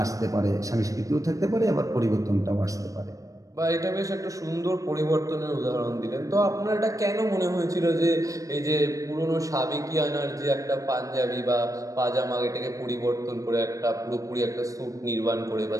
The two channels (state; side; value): late; left; 0.16 ms